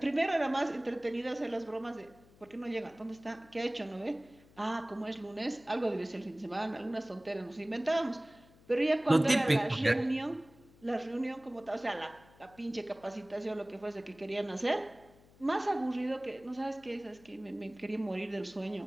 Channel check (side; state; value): left; noise; hum, 26 dB below the sound